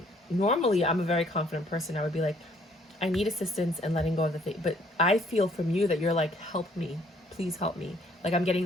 Normally, I'm a very confident person. I would be like, I need assistance and letting go of the thing. But I feel from you that you're like, help me, please help me. Like, I'm getting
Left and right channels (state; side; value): normal; both; correlation 0.63